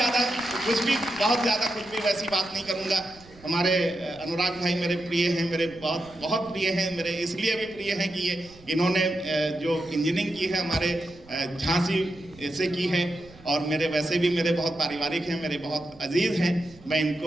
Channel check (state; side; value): noise; right; rumble, 24 dB below the sound